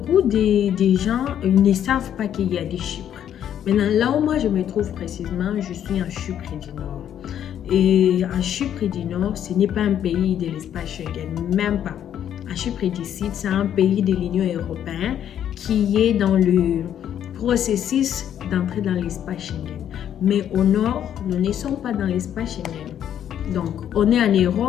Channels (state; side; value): quieter; right; 10.0 dB